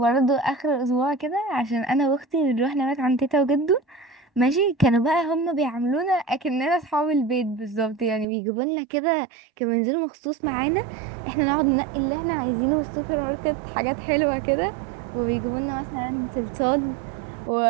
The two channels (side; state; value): left; drops out; at 8.2 s